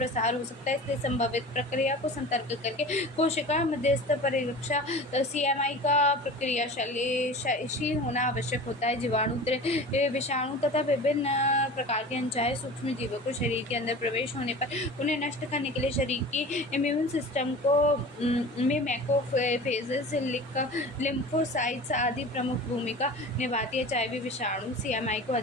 हो सकता है। इसलिए संभावित प्रक्रिया को सतर्क करके कोशिका मध्यस्थ परिरक्षा CMI का प्रक्रियाशील होना आवश्यक होता है। जीवाणु विषाणु तथा विभिन्न प्रकार के अनचाहे सूक्ष्म जीवों को शरीर के अंदर प्रवेश होने पर उन्हें नष्ट करने के लिए शरीर की इम्यून सिस्टम को में मैक्रोफेजेस, लिम्फोसाइट्स आदि प्रमुख भूमिका निभाती है। HIV विषाणु CMI को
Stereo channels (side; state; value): both; normal; correlation 0.37